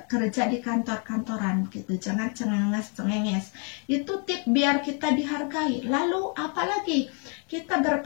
kerja di kantor-kantoran gitu. Jangan cengenges. Itu tip biar kita dihargai. Lalu apalagi kita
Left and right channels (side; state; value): right; quieter; 38.9 dB